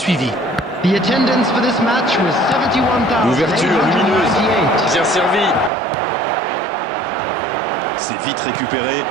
The attendance for this match was 71,898. L'ouverture lumineuse. Bien servi. C'est vite récupéré.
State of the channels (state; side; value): drops out; left; at 5.7 s